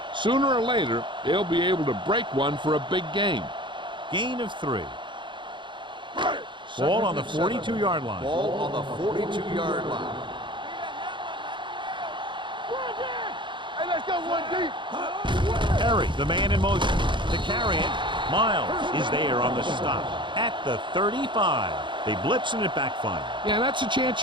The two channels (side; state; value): left; late; 0.23 ms